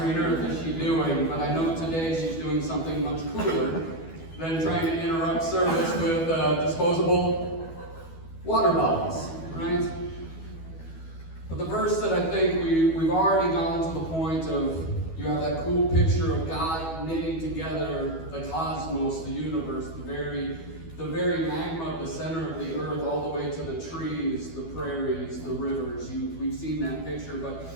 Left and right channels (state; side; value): late; right; 12 ms